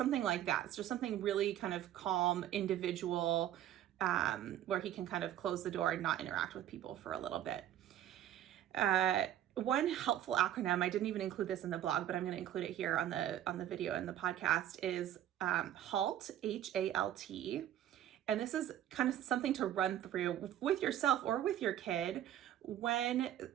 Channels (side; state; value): left; quieter; 11.7 dB